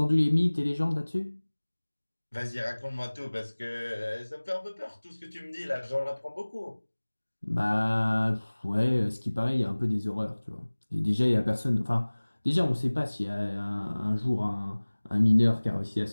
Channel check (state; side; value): inverted; both; correlation -1.00